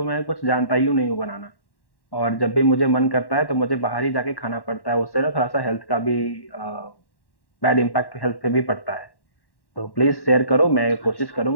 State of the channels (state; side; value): late; right; 1.1 ms